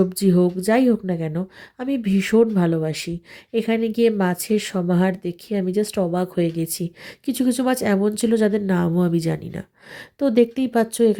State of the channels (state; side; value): identical; both; correlation 1.00